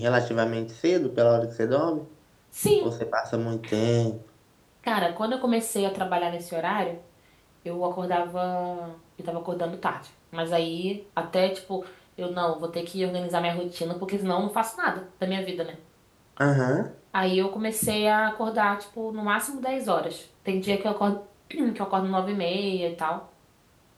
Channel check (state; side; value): identical; both; correlation 1.00